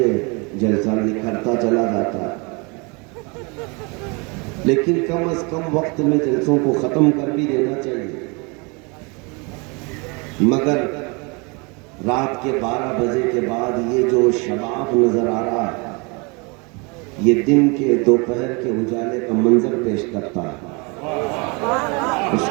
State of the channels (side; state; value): left; quieter; 30.1 dB